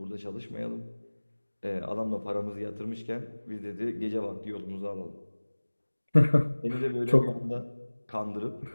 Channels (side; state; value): both; inverted; correlation -1.00